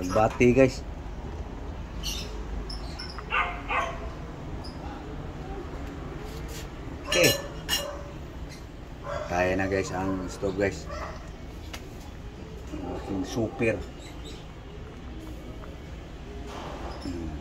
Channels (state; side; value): identical; both; correlation 1.00